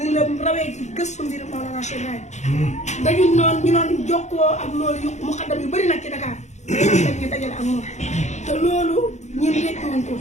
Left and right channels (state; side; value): late; right; 0.33 ms